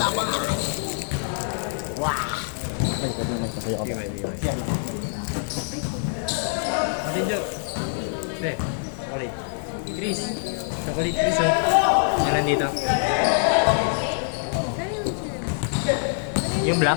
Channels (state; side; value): silent; right; digital silence